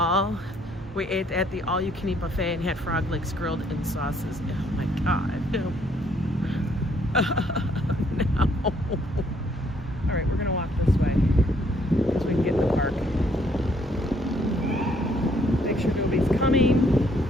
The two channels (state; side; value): normal; both; correlation 0.67